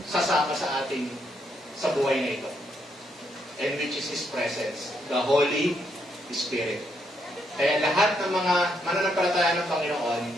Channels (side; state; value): both; normal; correlation 0.76